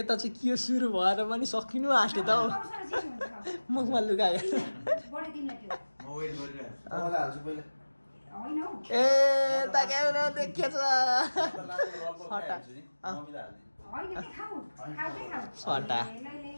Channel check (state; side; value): inverted; both; correlation -1.00